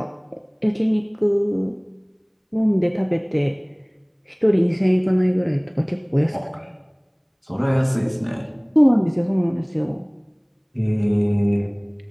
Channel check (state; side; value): identical; both; correlation 1.00